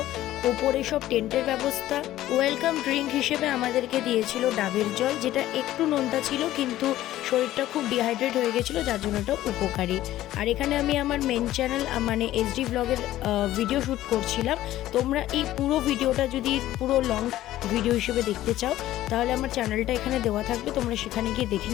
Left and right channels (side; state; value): right; quieter; 14.3 dB